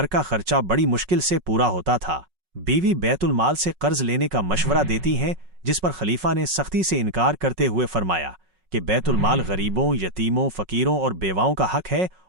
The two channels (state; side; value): late; left; 5.4 ms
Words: کا خرچہ بڑی مشکل سے پورا ہوتا تھا۔ بیوی بیت المال سے قرض لینے کا مشورہ دیتی ہیں، جس پر خلیفہ نے سختی سے انکار کرتے ہوئے فرمایا کہ بیت المال غریبوں، یتیموں، فقیروں اور بیواؤں کا حق ہے